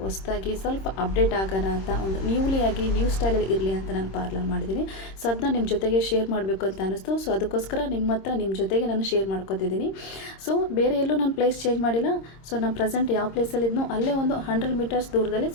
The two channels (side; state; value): right; late; 26 ms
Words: ಹೊಸದಾಗಿ ಸ್ವಲ್ಪ ಅಪ್ಡೇಟ್ ಆಗೋಣ ಅಂತ ಒಂದು ನ್ಯೂ ಸ್ಟೈಲಲ್ಲಿ ಇರಲಿ ಅಂತ ನಾನು ಪಾರ್ಲರ್ ಮಾಡಿದ್ದೀನಿ. ಸೊ ಅದನ್ನ ನಿಮ್ಮ ಜೊತೆಗೆ ಶೇರ್ ಮಾಡಬೇಕು ಅಂತ ಅನ್ನಿಸ್ತು. ಸೊ ಅದಕ್ಕೋಸ್ಕರ ನಿಮ್ಮ ಜೊತೆಗೆ ನಾನು ಶೇರ್ ಮಾಡ್ಕೊತಿದ್ದೀನಿ. ಸೊ ಬೇರೆ ಎಲ್ಲೂ ನಾನು ಪ್ಲೇಸ್ ಚೇಂಜ್ ಮಾಡಿಲ್ಲ. ಸೊ ನಾನು ಪ್ರೆಸೆಂಟ್ ಯಾವ ಪ್ಲೇಸಲ್ಲಿ ಇದ್ನೋ ಅಲ್ಲೇ ಒಂದು 100 ಮೀಟರ್ಸ್ ದೂರದಲ್ಲಿ